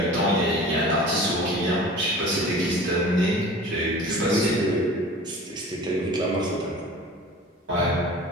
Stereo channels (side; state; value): both; normal; correlation 0.40